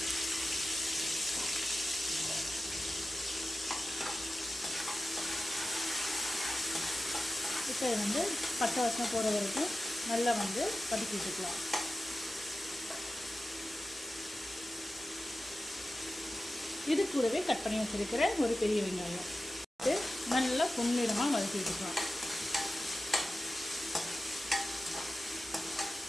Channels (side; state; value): both; normal; correlation 0.94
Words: இப்போ வந்து பச்சை வாசனை போகிற வரைக்கும் நல்லா வந்து வதக்கி விட்டுக்கலாம். இது கூடவே கட் பண்ணி வச்சுருக்கிற ஒரு பெரிய வெங்காயம் நல்லா பொன்னிறமாக வதக்கி விட்டுக்கலாம்.